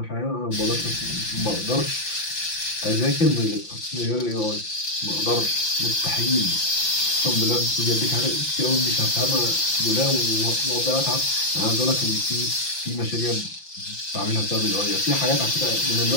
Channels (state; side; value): late; right; 5.8 ms